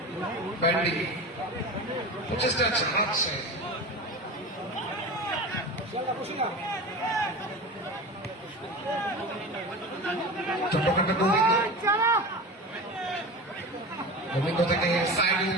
ব্যান্ডি প্রচেষ্টা চালাচ্ছে চট্টগ্রামের গোবিন্দ থেকে সাইডুল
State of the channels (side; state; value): both; normal; correlation 0.30